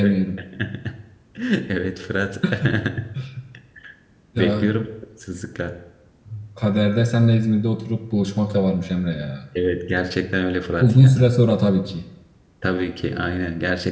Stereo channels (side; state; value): both; identical; correlation 1.00